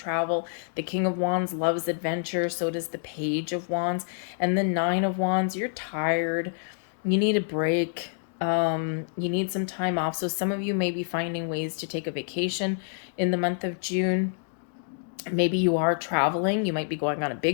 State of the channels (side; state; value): right; silent; digital silence